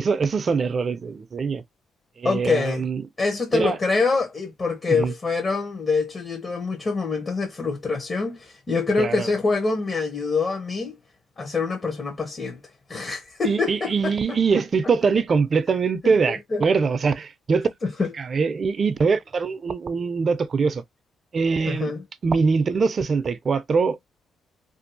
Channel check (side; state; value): both; normal; correlation 0.83